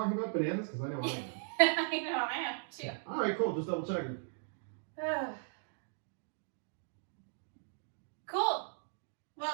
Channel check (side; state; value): left; silent; digital silence